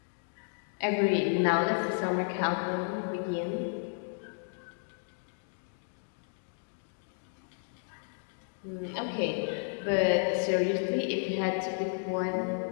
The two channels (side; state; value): right; silent; digital silence